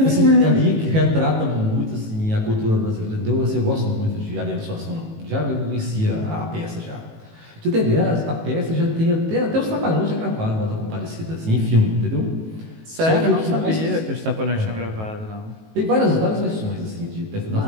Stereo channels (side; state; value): left; late; 18 ms